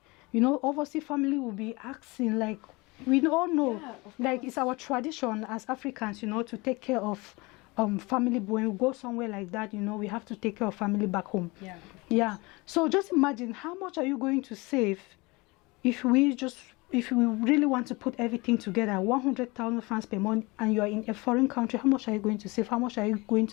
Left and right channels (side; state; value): right; quieter; 24.8 dB